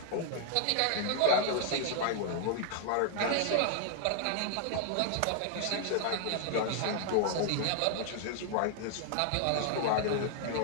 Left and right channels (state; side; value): different; both; correlation 0.00